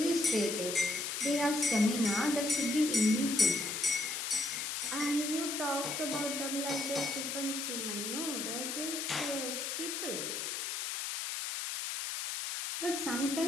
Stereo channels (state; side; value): noise; left; hiss, 3 dB below the sound